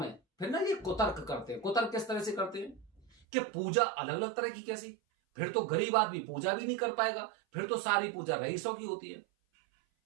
फिर ना ये कुतर्क करते हैं। कुतर्क किस तरह से करते हैं कि पूजा अलग अलग तरह की, कैसी? फिर तो गरीब आदमी पूजा भी नहीं कर पाएगा, फिर तो सारी पूजा रईसों की होती है।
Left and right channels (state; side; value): drops out; left; at 3.1 s